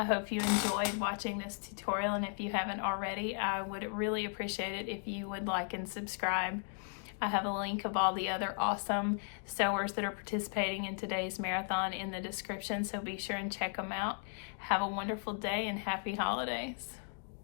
hope you enjoyed watching this tutorial, and if you haven't already, I would really appreciate it if you would like and subscribe. I have a link of all the other awesome sewers that are participating in today's marathon in the description, so be sure and check them out. Have a wonderful day and happy holidays.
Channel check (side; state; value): right; silent; 54 dB below the other